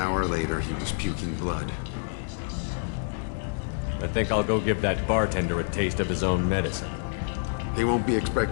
hour later he was puking blood. I think I'll go give that bartender a taste of his own medicine. He won't be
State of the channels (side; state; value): right; silent; 60 dB below the other